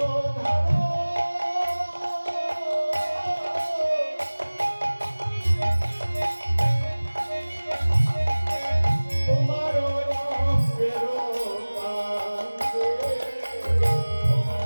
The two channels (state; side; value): inverted; both; correlation -1.00